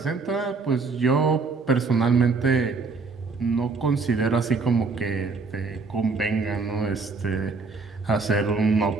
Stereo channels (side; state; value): left; quieter; 4.2 dB